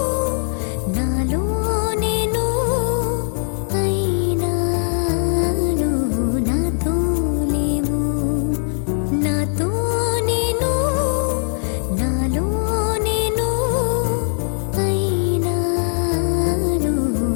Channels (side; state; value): right; silent; 66 dB below the other